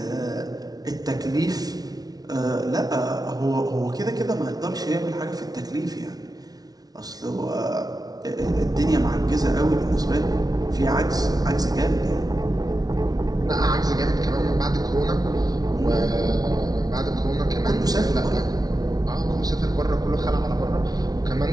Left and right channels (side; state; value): left; late; 0.19 ms